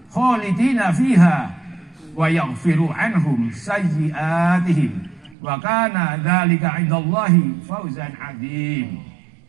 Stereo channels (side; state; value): left; drops out; at 5.4 s